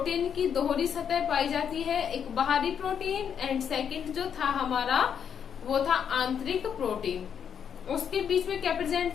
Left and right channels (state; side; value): quieter; right; 7.9 dB